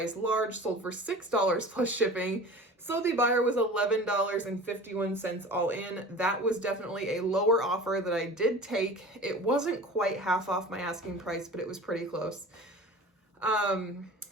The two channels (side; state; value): both; normal; correlation 0.38